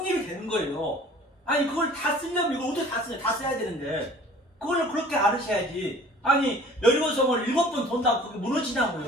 되는 거예요. 아니 그걸 다 쓰려면 이걸 어떻게 다 쓰냐. 다 써야 되는데 그걸 그렇게 알으셔야지. 아니 여리고성을 7번 돈다고 그게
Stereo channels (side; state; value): both; normal; correlation 0.48